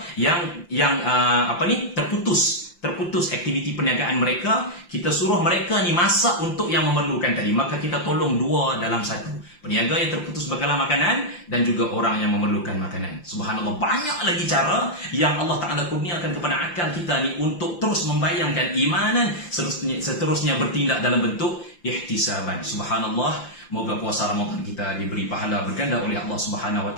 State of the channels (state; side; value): late; right; 5.8 ms